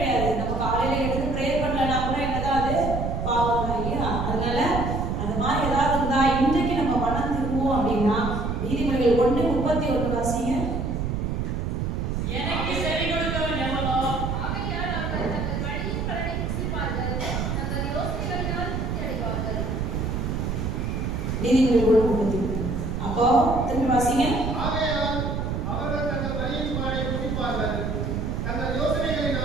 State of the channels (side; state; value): right; noise; rumble, 1 dB below the sound